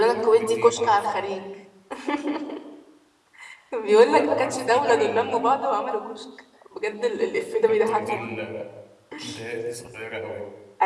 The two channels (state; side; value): identical; both; correlation 1.00